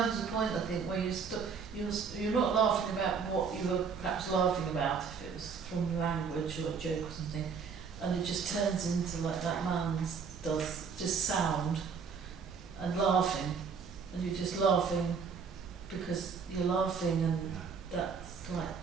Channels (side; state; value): left; quieter; 5.9 dB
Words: a point, I think, where you're not laughing about what you were perhaps laughing about, if it was from language or a joke or something, and it just turns into like that man's does, just sound and laughing, and you're just laughing because you're laughing, and that's like